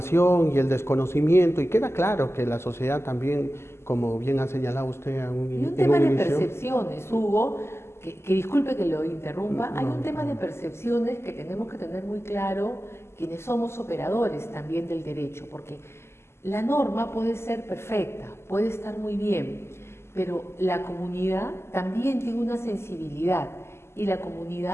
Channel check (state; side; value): late; right; 0.12 ms